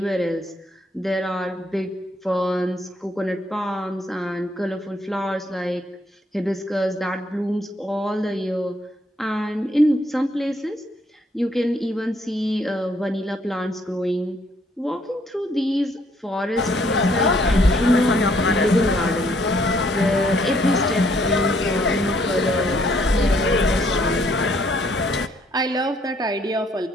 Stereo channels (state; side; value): normal; both; correlation 0.68